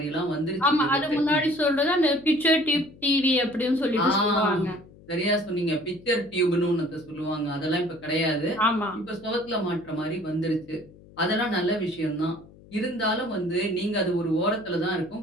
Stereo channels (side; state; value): left; noise; hum, 23 dB below the sound